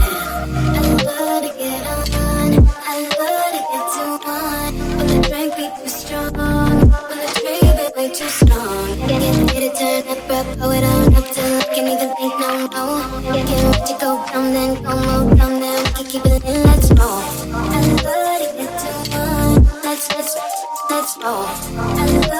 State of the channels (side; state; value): both; identical; correlation 1.00